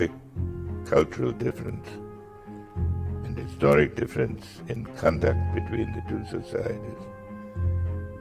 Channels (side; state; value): both; identical; correlation 1.00